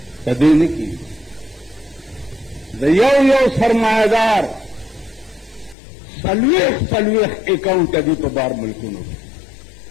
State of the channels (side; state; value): right; drops out; at 5.8 s